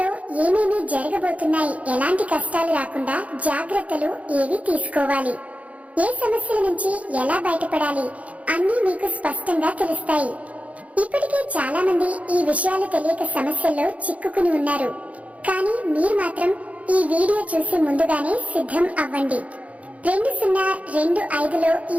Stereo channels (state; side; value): late; left; 0.067 ms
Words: ఏమేమి జరగబోతున్నాయి, ఎలాంటి కష్టాలు రాకుండా జాగ్రత్తలు ఏవి తీసుకోవాలి, ఏ సమస్యల నుంచి ఎలా బయటపడాలి అన్నీ మీకు స్పష్టంగా తెలుస్తాయి. ఇప్పటికే చాలా మంది ఈ విషయాలు తెలియక సమస్యల్లో చిక్కుకుని ఉన్నారు. కానీ మీరు మాత్రం ఈ వీడియో చూసి ముందుగానే సిద్ధం అవ్వండి. 2025లో ఈ